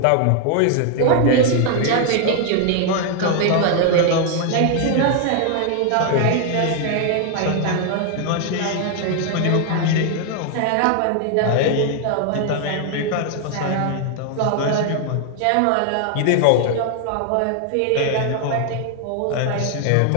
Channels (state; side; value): different; both; correlation 0.00